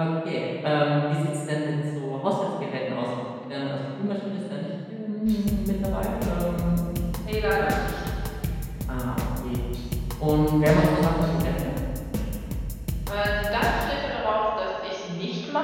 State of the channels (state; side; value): identical; both; correlation 1.00